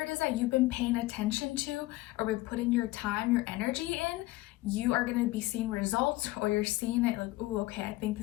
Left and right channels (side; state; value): right; quieter; 19.0 dB